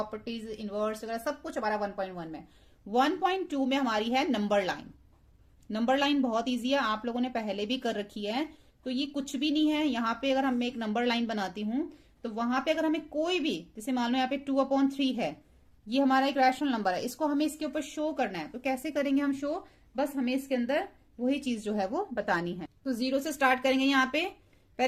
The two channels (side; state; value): both; identical; correlation 1.00